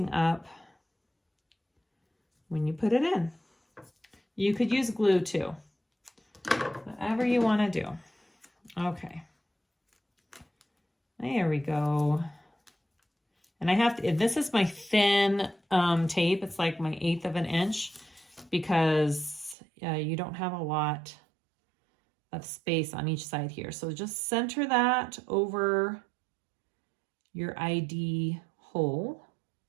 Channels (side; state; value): left; drops out; at 19.6 s